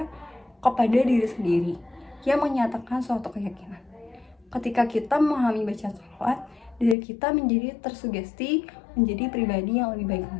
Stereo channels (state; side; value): drops out; right; at 7.0 s